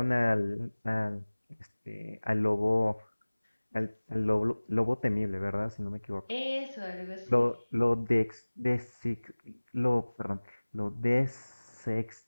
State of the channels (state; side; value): inverted; both; correlation -1.00